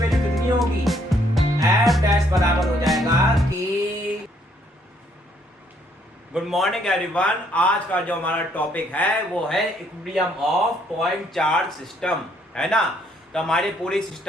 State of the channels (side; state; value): both; normal; correlation 0.68